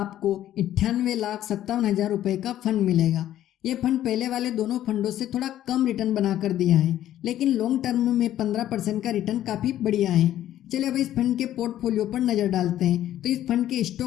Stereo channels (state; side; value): quieter; right; 12.4 dB